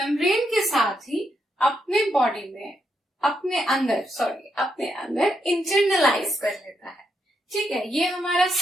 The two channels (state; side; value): normal; both; correlation 0.80